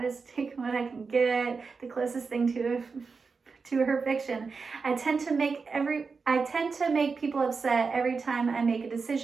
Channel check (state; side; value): quieter; left; 4.8 dB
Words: take what I can get, the closest thing to her fiction. I tend to make people upset every time I make a